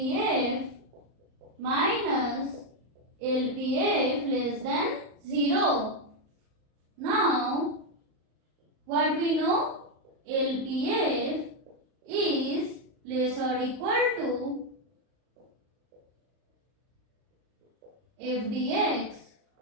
minus LPF less than 0. Now, what we know? LPF is less or equal to FDX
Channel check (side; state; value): left; late; 38 ms